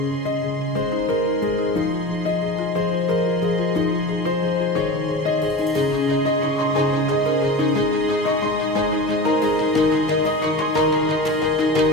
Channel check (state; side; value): normal; both; correlation 0.30